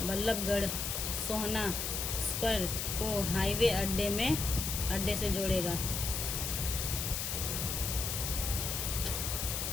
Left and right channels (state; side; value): noise; left; hiss, 2 dB below the sound